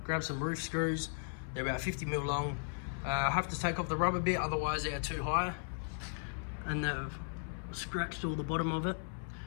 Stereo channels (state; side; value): silent; right; 54 dB below the other